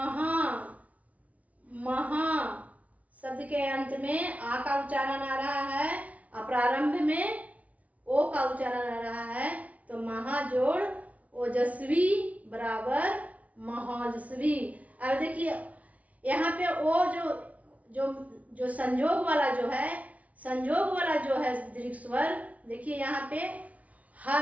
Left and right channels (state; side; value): late; left; 0.069 ms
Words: महा शब्द के अंत में आ का उच्चारण आ रहा है और प्रारंभ में ओ का उच्चारण आ रहा है, तो महा जोड़ ओजस्वी बराबर महोजस्वी। अब देखिए यहाँ पे ओ जो संयोग वाला जो है, संयोग वाला जो है दीर्घ स्वर, देखिए यहाँ पे ह